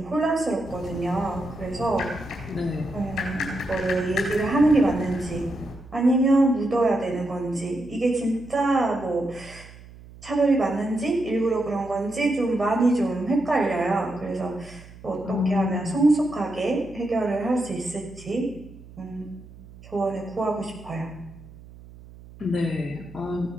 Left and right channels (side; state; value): right; noise; hum, 19 dB below the sound